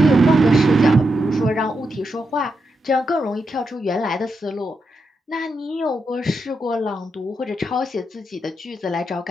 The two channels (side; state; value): both; normal; correlation 0.85